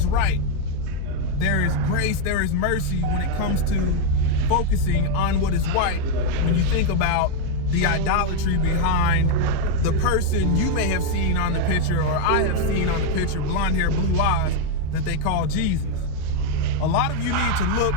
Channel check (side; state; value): both; different; correlation 0.01